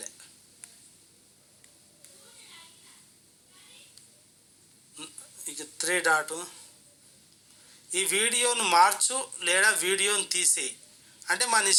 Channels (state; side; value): identical; both; correlation 1.00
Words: ఇక 3 డాట్ ఈ వీడియోను మార్చు లేదా వీడియోను తీసేయి అంటే మన